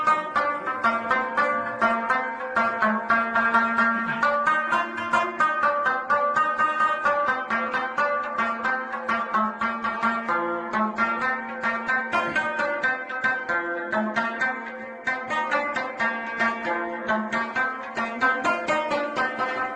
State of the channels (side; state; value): both; identical; correlation 1.00